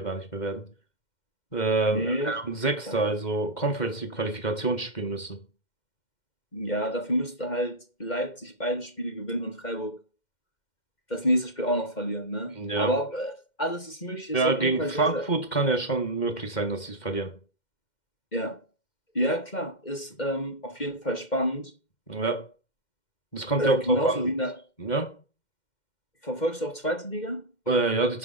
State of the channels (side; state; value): right; late; 2.1 ms